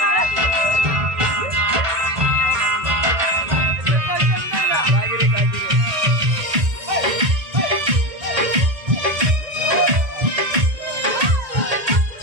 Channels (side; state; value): left; late; 1.8 ms